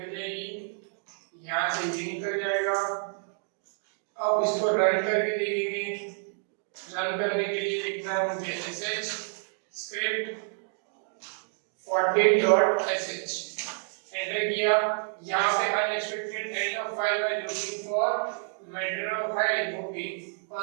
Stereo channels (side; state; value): left; silent; 59 dB below the other